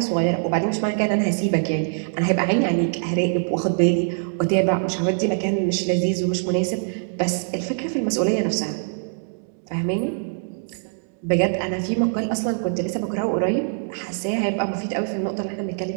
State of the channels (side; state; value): left; silent; digital silence